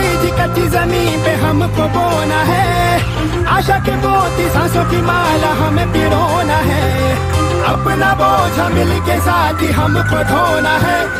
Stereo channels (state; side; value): identical; both; correlation 1.00